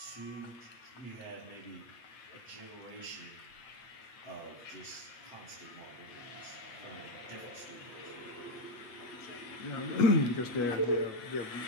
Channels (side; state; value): right; late; 8.3 ms